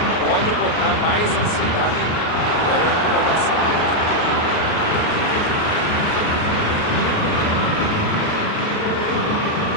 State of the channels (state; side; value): late; right; 38 ms